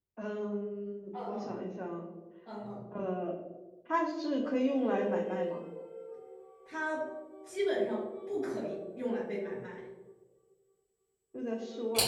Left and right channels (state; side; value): identical; both; correlation 1.00